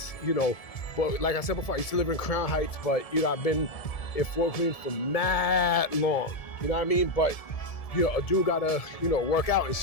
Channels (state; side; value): late; right; 1.7 ms